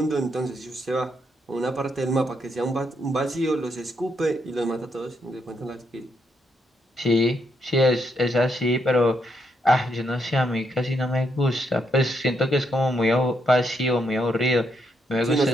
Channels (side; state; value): both; normal; correlation 0.78